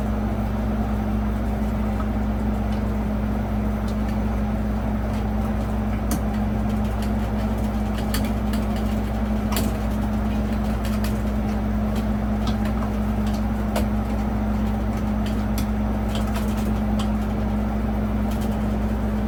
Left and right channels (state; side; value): identical; both; correlation 1.00